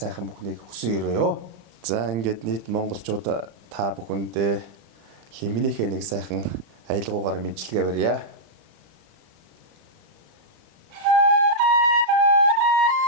бүхнийг хүсэн өрөөё. За ингээд нийт монголчууд та бүхэндээ лиминийхээ нэг сайхан аялгуугаар мэдлэгээ барья.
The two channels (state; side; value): late; left; 35 ms